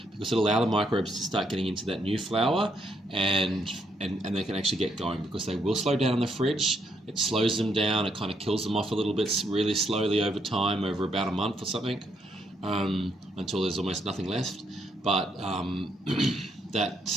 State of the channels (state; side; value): normal; both; correlation 0.75